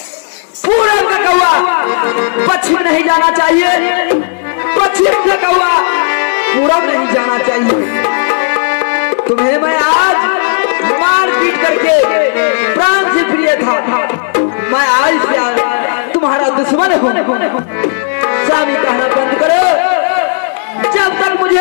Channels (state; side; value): silent; right; digital silence